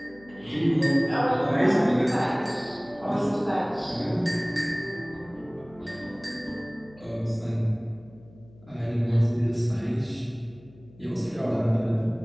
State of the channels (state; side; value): noise; left; hum, 24 dB below the sound